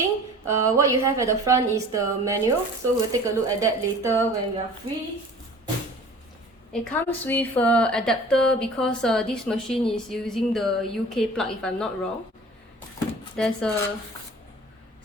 What you have at the front is the manual, so we'll take a look at that later when we are free. It comes with an adapter because this machine is using the UK plug if I'm not wrong. There's a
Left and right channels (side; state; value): both; normal; correlation 0.44